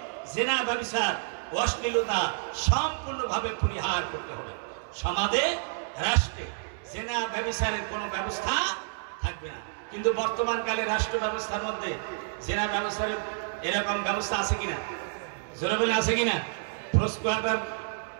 জিনা, ব্যভিচার, অশ্লীলতা সম্পূর্ণভাবে পরিহার করতে হবে। সমাজে, রাষ্ট্রে জিনা ব্যভিচারের কোনো ব্যবস্থা থাকবে না। কিন্তু বর্তমান কালে রাষ্ট্র ব্যবস্থার মধ্যে জিনা ব্যভিচারের এরকম ব্যবস্থা আছে কিনা? জোরে বলে আছে কিনা? প্রস্কোয়াটার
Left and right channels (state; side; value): silent; left; 58 dB below the other